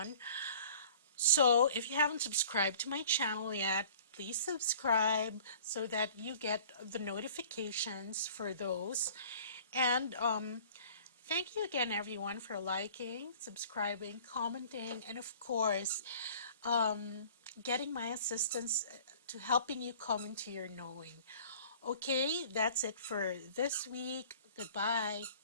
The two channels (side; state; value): both; inverted; correlation -0.49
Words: So if you haven't subscribed to my channel yet, please subscribe so that you get the notifications for those. And thank you again, everyone, for liking, subscribing, commenting, and of course, getting my assistance to helping you come into your knowing. Okay, that's it for this week. Goodbye.